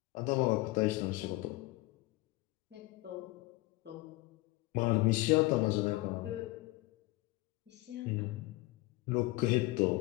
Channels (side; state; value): right; quieter; 21.0 dB